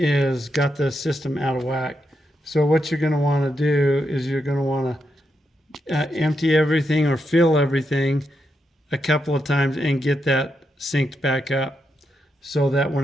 got the system out of whack. So what you're going to want to do is you're going to want to empty everything or fill everything a couple of times and get that synced back up, so that when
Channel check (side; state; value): both; normal; correlation 0.83